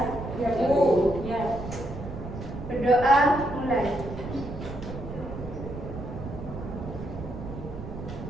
Ya, Bu. Berdoa mulai.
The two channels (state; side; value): noise; right; rumble, 9 dB below the sound